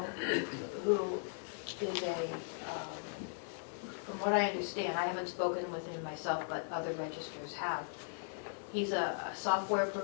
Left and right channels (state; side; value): silent; right; digital silence